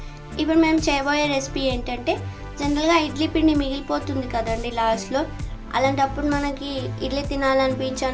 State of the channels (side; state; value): both; identical; correlation 1.00